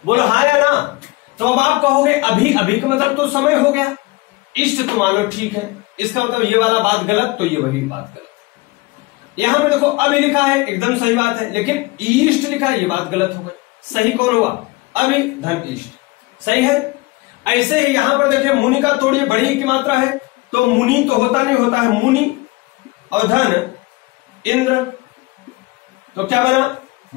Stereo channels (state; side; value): quieter; right; 22.8 dB